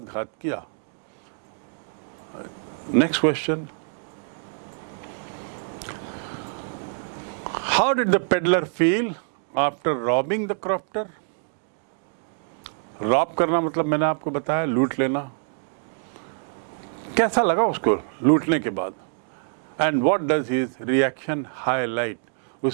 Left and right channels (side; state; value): left; silent; digital silence